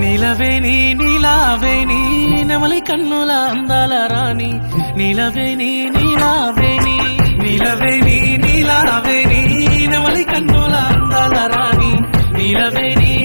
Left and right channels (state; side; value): inverted; both; correlation -1.00